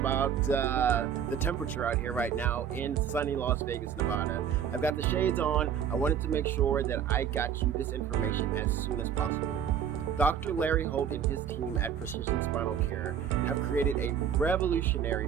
the temperature out here right now in sunny Las Vegas, Nevada. I've got the shades on. I wanted to make sure that I got you this information as soon as possible. Dr. Larry Holt and his team at Precision Spinal Care have created a revolutionary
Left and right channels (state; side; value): quieter; left; 8.4 dB